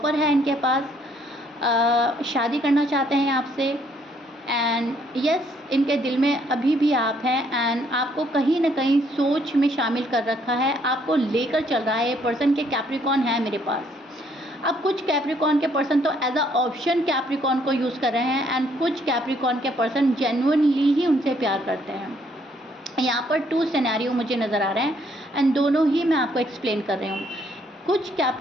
है इनके पास, शादी करना चाहते हैं आपसे, एंड यस, इनके दिल में अभी भी आप हैं, एंड आपको कहीं ना कहीं सोच में शामिल कर रखा है, आपको लेकर चल रहा है। ये पर्सन के कैप्रिकॉन है मेरे पास। अब कुछ कैप्रिकॉन के पर्सन तो एज अ ऑप्शन कैप्रिकॉन को यूज़ कर रहे हैं, एंड कुछ कैप्रिकॉन के पर्सन जेन्युइनली ही उनसे प्यार करते हैं। यहाँ पर 2 सिनेरियो मुझे नज़र आ रहे हैं, एंड दोनों ही मैं आपको एक्सप्लेन कर रही हूँ। कुछ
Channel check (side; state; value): both; normal; correlation 0.67